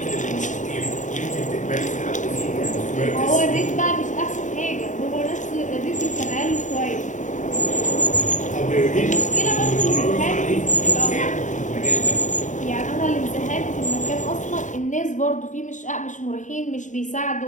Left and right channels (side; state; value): right; late; 0.36 ms